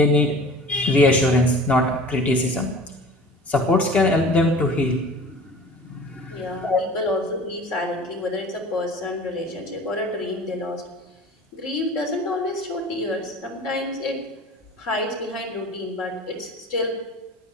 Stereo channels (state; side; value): normal; both; correlation 0.42